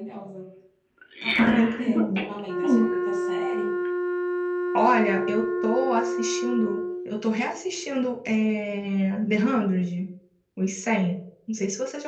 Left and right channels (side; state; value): both; identical; correlation 1.00